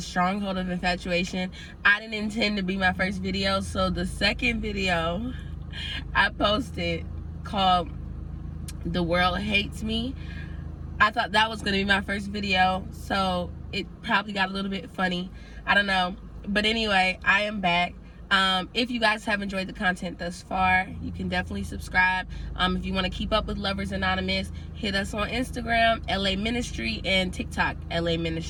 stronghold of infatuation, I didn't intend to be my first video. So the second video I posted, called The World Hates Me, I thought that was gonna be my first video, so it probably got a little bit funny. I don't know, but anyway, I am back. If you guys have enjoyed the content thus far, you can definitely subscribe. If you want to keep up with Lovers Anonymous, hit us on Instagram, laministry, and TikTok,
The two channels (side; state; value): both; identical; correlation 1.00